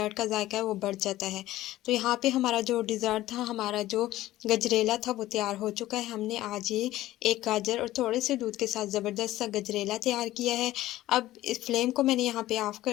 का जायका है वो बढ़ जाता है। तो यहाँ पे हमारा जो डिज़र्ट था, हमारा जो गजरेला था वो तैयार हो चुका है। हमने आज ये एक गाजर और थोड़े से दूध के साथ ज़बरदस्त सा गजरेला तैयार किया है। अब इस फ्लेम को मैंने यहाँ पे ऑफ़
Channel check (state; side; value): quieter; right; 15.4 dB